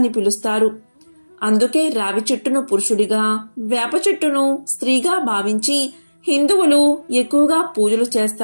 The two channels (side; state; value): both; inverted; correlation -1.00